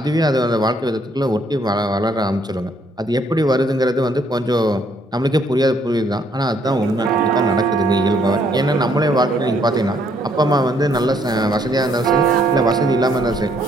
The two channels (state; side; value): normal; both; correlation 0.68